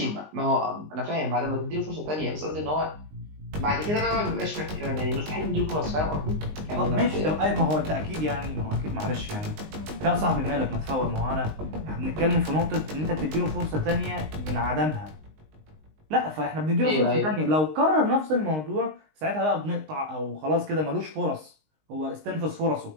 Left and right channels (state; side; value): late; left; 19 ms